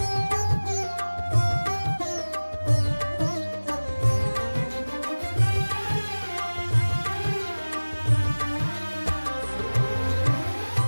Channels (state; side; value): inverted; both; correlation -1.00